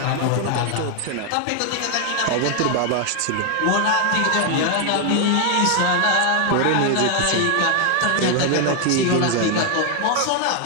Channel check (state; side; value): different; both; correlation 0.00